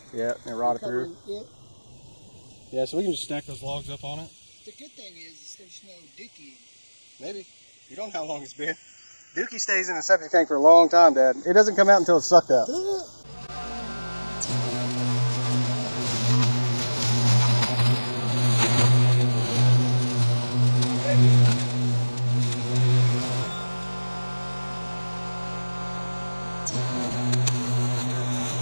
Yeah, it rotted through. It. Yeah, so we can just stack those logs up on it. The good thing is there's no dookie. Maybe. You don't know how long it's been. Dookie stays in a septic tank for a long time, Dad. It doesn't come out until it's sucked out.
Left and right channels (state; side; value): inverted; both; correlation -1.00